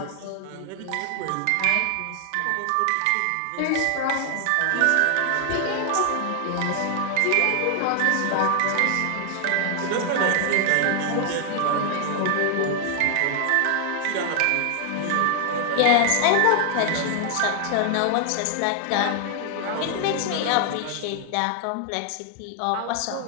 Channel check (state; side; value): different; both; correlation 0.00